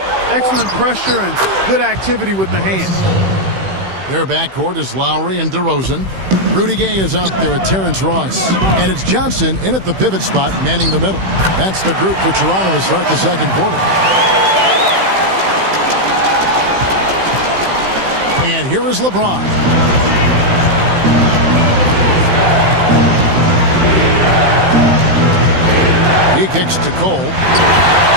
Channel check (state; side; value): late; left; 16 ms